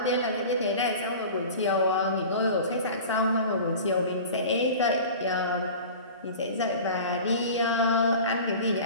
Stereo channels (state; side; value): inverted; both; correlation -0.38